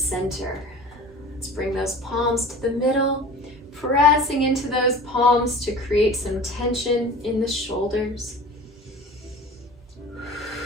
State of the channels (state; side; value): normal; both; correlation 0.40